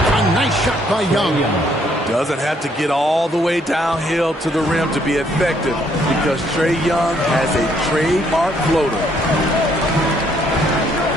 A nice shot by Young. Doesn't have to get all the way downhill to the rim to be effective because Trae Young has a trademark floater.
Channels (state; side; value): normal; both; correlation 0.68